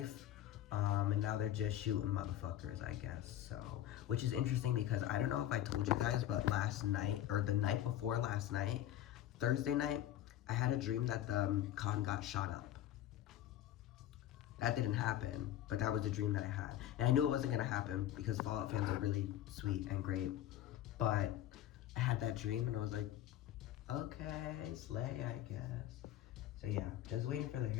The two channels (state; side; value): quieter; right; 12.5 dB